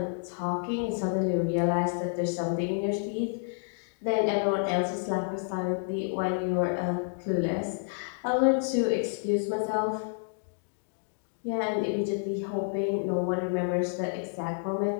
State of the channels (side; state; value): right; silent; digital silence